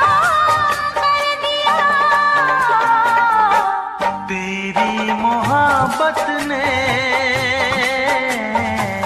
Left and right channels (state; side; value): identical; both; correlation 1.00